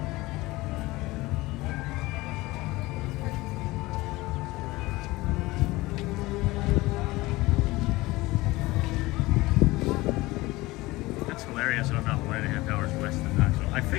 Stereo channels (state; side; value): quieter; right; 20.3 dB